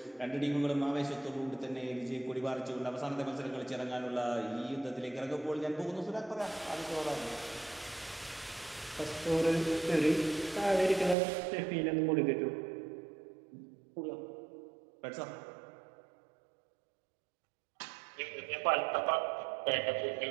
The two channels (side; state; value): left; drops out; at 11.2 s